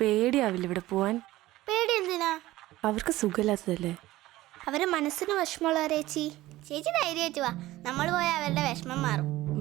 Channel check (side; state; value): left; quieter; 16.9 dB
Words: ഇവിടെ പോവാൻ? പേടി എന്തിനാ? അവർക്ക് സുഖമില്ലാത്തതല്ലേ? അവരെ മനസ്സിന് വിഷമമുള്ളവരെ ചേച്ചി ധൈര്യമായിട്ട് വാ, നമ്മൾ പോയാൽ അവരുടെ വിഷമം മാറും.